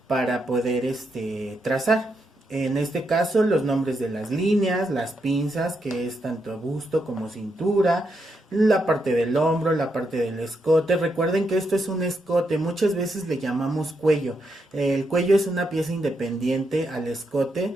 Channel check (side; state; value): both; normal; correlation 0.81